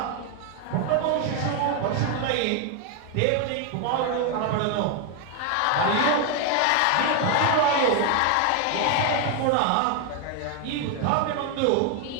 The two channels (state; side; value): different; both; correlation 0.01